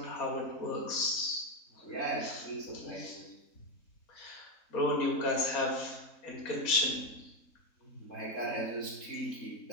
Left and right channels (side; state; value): right; late; 3.7 ms